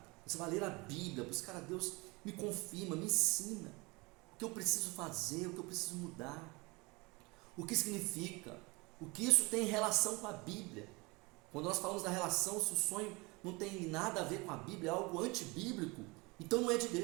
Você vai ler a Bíblia, buscar a Deus, me confirma, me ensina o que eu preciso fazer, o que eu preciso mudar, o que significa, o que isso tem relação com a Bíblia. Quando nós falamos da relação, se o sonho não tem nada a ver com a Bíblia, é algo antibíblico, então não é de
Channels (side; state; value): left; quieter; 25.5 dB